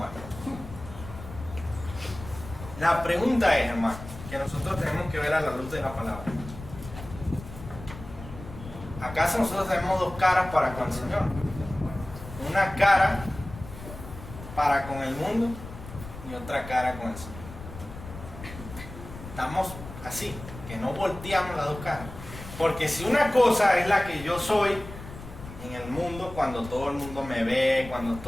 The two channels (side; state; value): left; noise; rumble, 13 dB below the sound